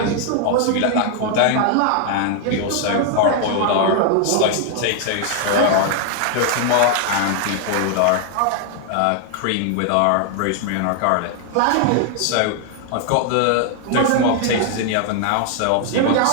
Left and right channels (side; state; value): both; different; correlation 0.00